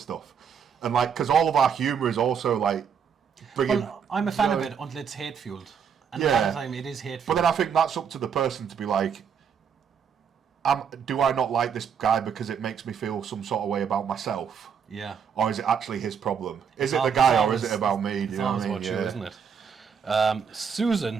stuff. And like, because all of our humour is also like bringing. Well, I'm a fan of it until it's hate fueled, and a lot of the time it is hate fueled. But then I think that's up to the person to be like. Do I not like this guy because it makes me feel some sort of way about myself? Yeah. Or is it actually his problem? Is it the guy or is it about me? Do you know what I mean? It's always about you, isn't it?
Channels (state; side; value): quieter; left; 7.1 dB